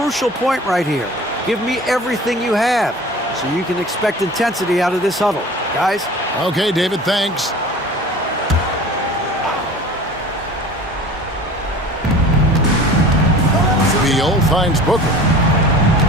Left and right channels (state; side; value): normal; both; correlation 0.41